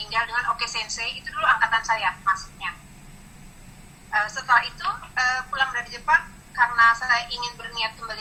dengan Oke Sensei, itu dulu angkatan saya masuknya. Setelah itu pulang dari Jepang, karena saya ingin berniat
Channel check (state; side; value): identical; both; correlation 1.00